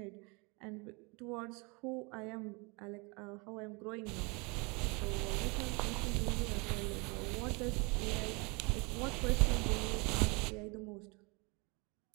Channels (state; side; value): quieter; left; 29.2 dB